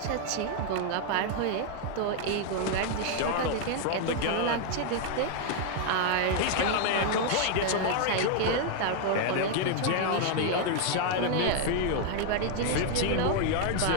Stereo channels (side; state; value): both; different; correlation 0.00